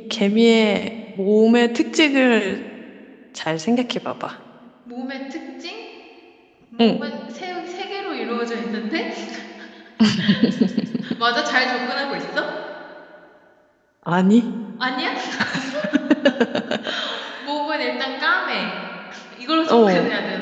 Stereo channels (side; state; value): both; identical; correlation 1.00